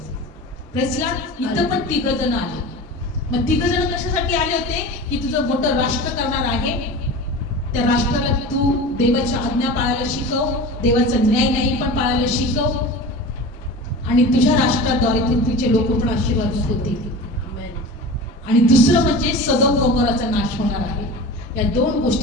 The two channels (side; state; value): both; normal; correlation 0.33